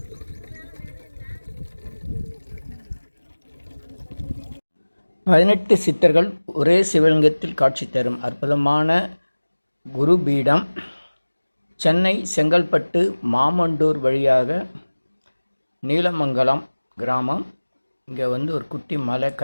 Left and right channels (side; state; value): both; inverted; correlation -1.00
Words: பதினெட்டு சித்தர்கள் ஒரே சிவலிங்கத்தில் காட்சி தரும் அற்புதமான குருபீடம் சென்னை செங்கல்பட்டு மாமண்டூர் வழியாக நீலமங்கலம் கிராமம். இங்கே ஒரு குட்டி மலை,